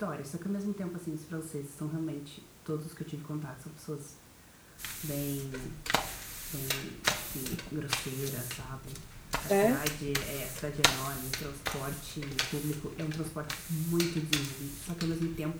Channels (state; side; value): identical; both; correlation 1.00